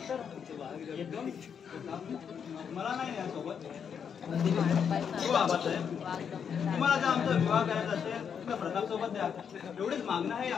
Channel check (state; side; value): quieter; right; 7.3 dB